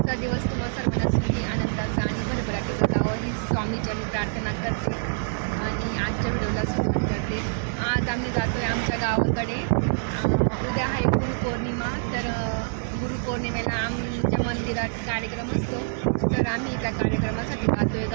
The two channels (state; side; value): silent; left; digital silence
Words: दिवस तुम्हा सर्वांना सुखी आनंदाचा आणि भरभराटीचा जावं ही स्वामीचरणी प्रार्थना करते आणि आजच्या व्हिडिओला सुरुवात करते. आज आम्ही जातो आहे आमच्या गावाकडे. उद्या आहे गुरुपौर्णिमा, तर गुरुपौर्णिमेला आमच्या मंदिरात कार्यक्रम असतो, तर आम्ही त्या कार्यक्रमासाठी जातो आहे